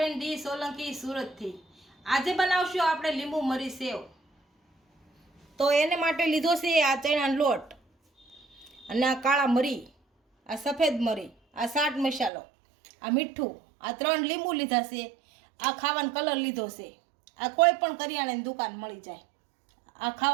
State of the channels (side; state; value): left; drops out; at 12.3 s